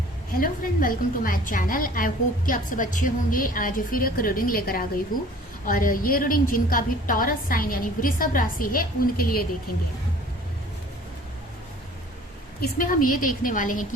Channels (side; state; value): both; normal; correlation 0.49